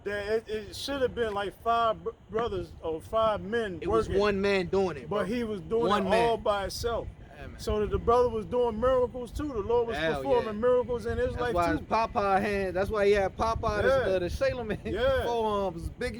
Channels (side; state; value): both; identical; correlation 1.00